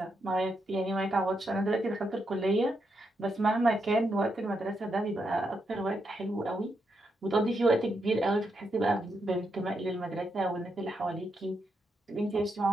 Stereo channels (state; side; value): normal; both; correlation 0.81